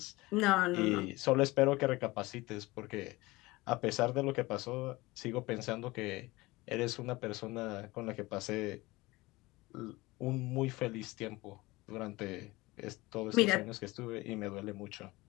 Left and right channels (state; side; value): quieter; right; 21.1 dB